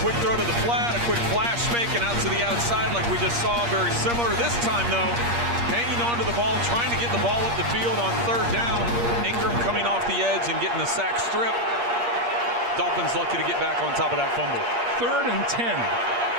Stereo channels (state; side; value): late; left; 8.5 ms